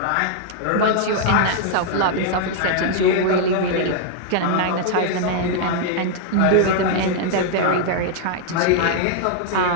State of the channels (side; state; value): both; different; correlation -0.01